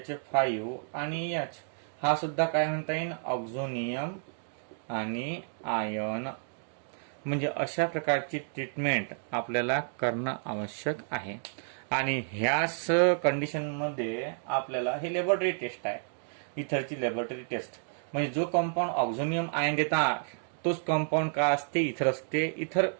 आणि H. हा सुद्धा काय म्हणता येईल? ऑक्झोनियम आणि आयन. म्हणजे अशा प्रकारची ट्रीटमेंट आपल्याला करणं आवश्यक आहे. आणि ह्याच कंडिशन मध्ये आपल्याला हे लॅबोरेटरी टेस्ट आहे. इथरची लॅबोरेटरी टेस्ट. म्हणजे जो कंपाऊंड ऑक्झोनियम आयन देतात तोच कंपाऊंड का असते, इथर असते. इथर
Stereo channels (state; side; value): silent; left; digital silence